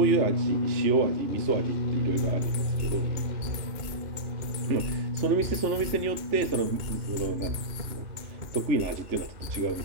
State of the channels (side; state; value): left; late; 2.3 ms